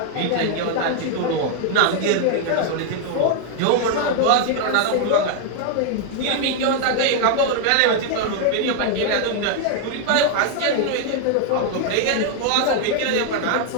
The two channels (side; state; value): both; different; correlation 0.00